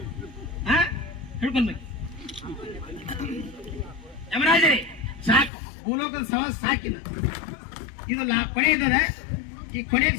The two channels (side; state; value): right; drops out; at 5.5 s